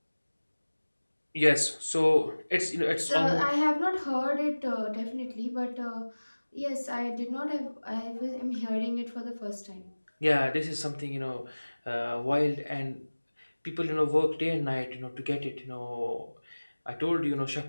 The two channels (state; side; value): inverted; both; correlation -1.00